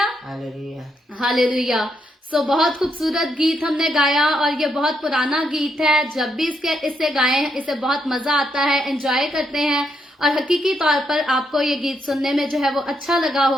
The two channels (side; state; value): both; normal; correlation 0.78